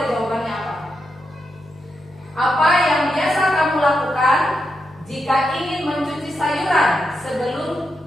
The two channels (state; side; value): noise; left; hum, 26 dB below the sound